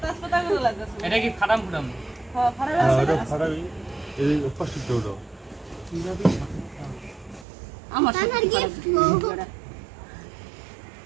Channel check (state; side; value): drops out; left; at 7.5 s